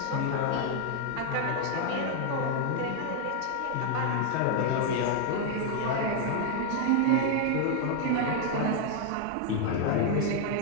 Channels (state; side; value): different; both; correlation 0.00